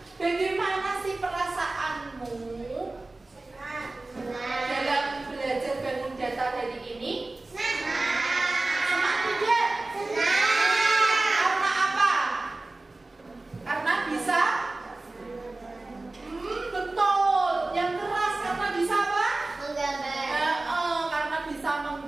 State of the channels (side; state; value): left; quieter; 3.1 dB